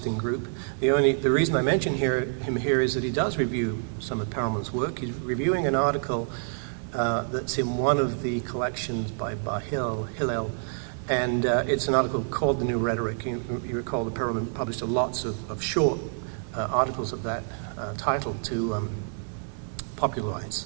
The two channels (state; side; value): silent; left; 60 dB below the other